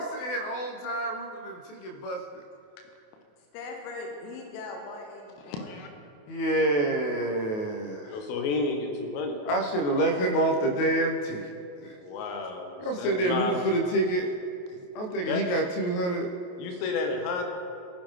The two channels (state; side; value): late; right; 28 ms